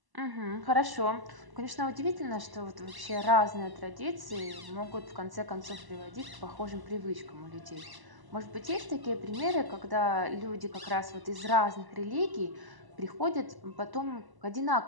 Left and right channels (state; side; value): late; left; 1.0 ms